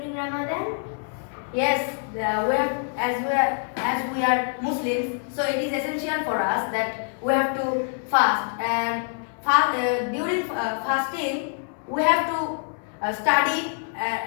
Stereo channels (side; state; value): right; silent; 58 dB below the other